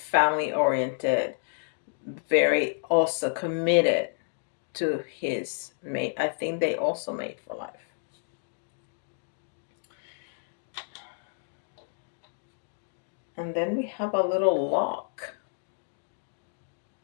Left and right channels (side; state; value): right; silent; digital silence